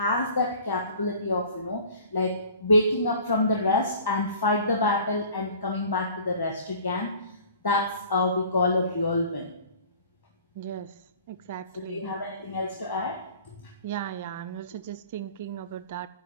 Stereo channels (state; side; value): inverted; both; correlation -0.47